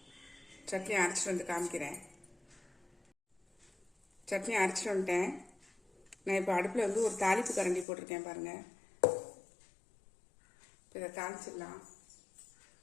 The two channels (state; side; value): drops out; right; at 7.9 s